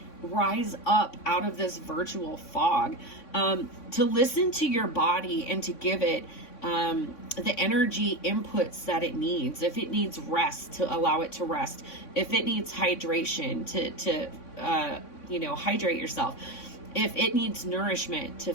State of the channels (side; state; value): right; late; 3.6 ms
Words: rise up out of this virtual fog, to listen to your body and to give it the energy inputs that it needs. If it needs rest, to allow it to rest. If it needs hydration, to you know, hydrate yourself. If it needs nourishment, to